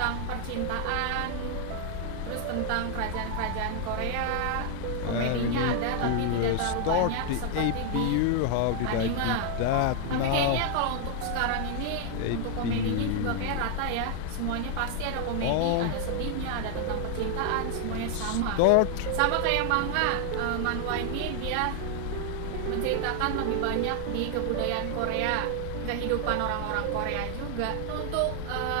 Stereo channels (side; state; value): both; different; correlation 0.00